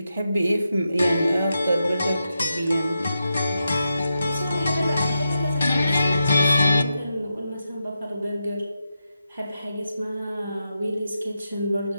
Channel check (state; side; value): inverted; both; correlation -0.87